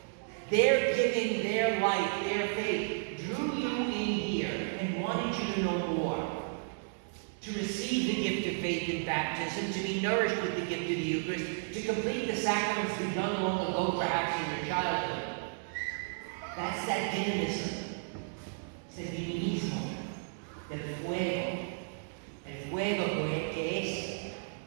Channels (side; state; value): left; silent; digital silence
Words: Their giving, their life, their faith drew you in here and wanted you to know more. To receive the gift of faith in baptism, to be nourished with the gift of the Eucharist, to complete the sacraments begun long ago, perhaps in your childhood. That's that dynamism. It's the dinamismo del fuego. El fuego que es